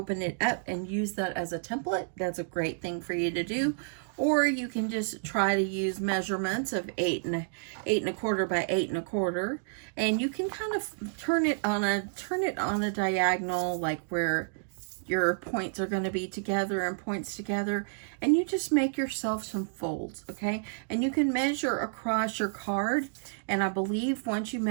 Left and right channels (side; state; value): left; silent; digital silence